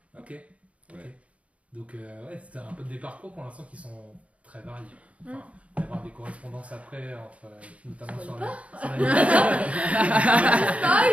Ok. Donc c'était un peu des parcours pour l'instant qui sont très variés. Enfin, il va y avoir des correspondances après, notamment sur la...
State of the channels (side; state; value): left; late; 0.064 ms